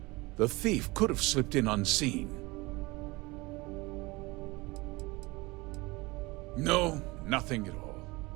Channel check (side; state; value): left; quieter; 23.2 dB